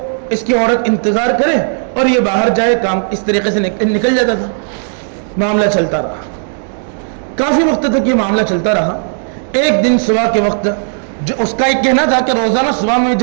اس کی عورت انتظار کرے اور یہ باہر جائے، کام اس طریقے سے نکل جاتا تھا. معاملہ چلتا رہا، کافی وقت تک یہ معاملہ چلتا رہا. ایک دن صبح کے وقت جو اس کا ایک کہنا تھا کہ روزانہ صبح میں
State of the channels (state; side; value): silent; left; digital silence